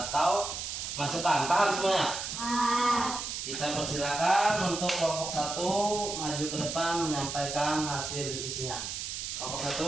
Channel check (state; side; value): noise; right; hiss, 5 dB below the sound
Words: masukan. Paham semuanya? Kita persilakan untuk kelompok satu maju ke depan menyampaikan hasil diskusinya. Kelompok